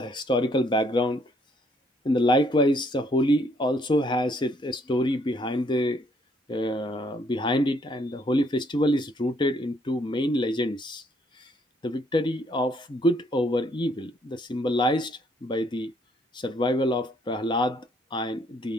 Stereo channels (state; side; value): normal; both; correlation 0.67